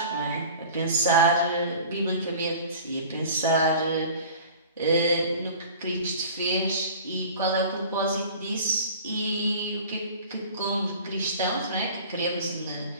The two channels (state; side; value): inverted; both; correlation -0.42